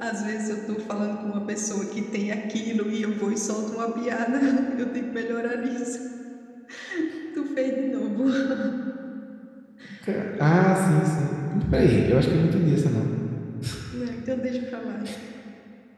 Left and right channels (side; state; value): both; identical; correlation 1.00